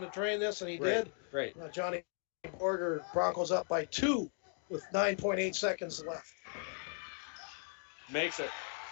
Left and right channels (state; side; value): silent; right; 53 dB below the other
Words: to drain this, and he did. Right. Johnny Borger, Broncos up by 2 with 9.8 seconds left. Makes it.